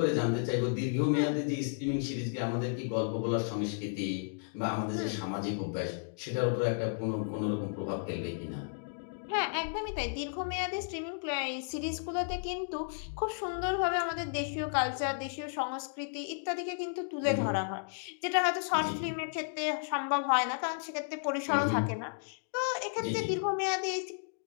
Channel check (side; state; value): right; silent; digital silence